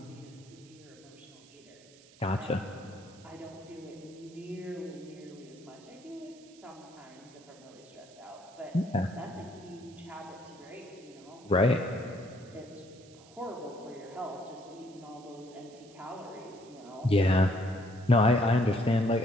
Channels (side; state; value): right; noise; hiss, 24 dB below the sound